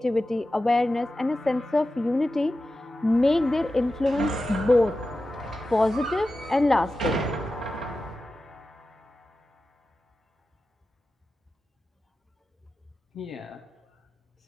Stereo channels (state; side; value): normal; both; correlation 0.93